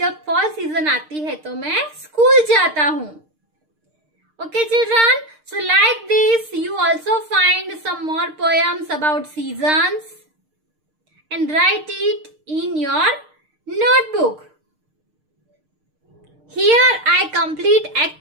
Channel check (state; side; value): late; left; 6.5 ms